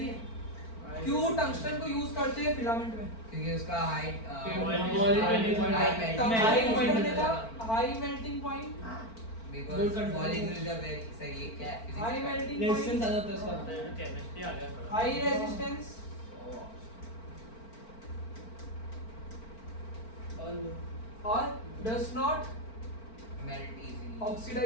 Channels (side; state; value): right; late; 4.4 ms